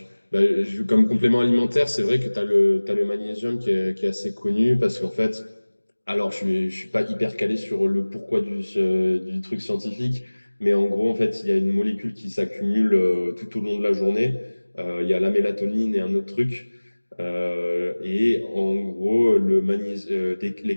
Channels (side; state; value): both; inverted; correlation -1.00